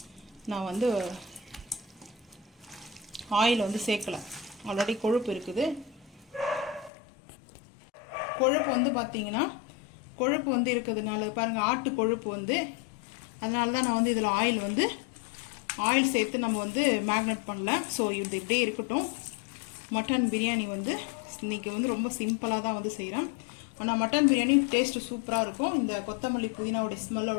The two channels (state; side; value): drops out; right; at 6.9 s